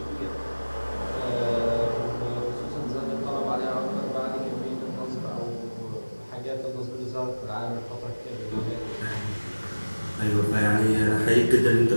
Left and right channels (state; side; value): inverted; both; correlation -1.00